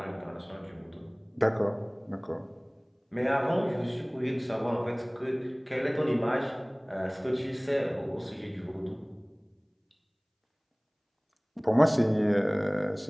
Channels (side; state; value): both; identical; correlation 1.00